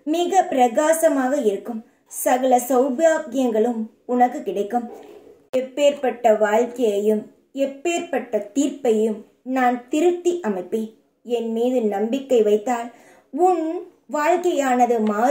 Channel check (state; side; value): identical; both; correlation 1.00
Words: மிக பிரகாசமாக இருக்கும். சகல சௌபாகியங்களும் உனக்கு கிடைக்கும். எப்பேற்பட்ட வாழ்க்கையையும் எப்பேற்பட்ட தீர்ப்பையும் நான் திருத்தி அமைப்பேன். என் மீது நம்பிக்கை வைத்தால் உன் வாழ்க்கையானது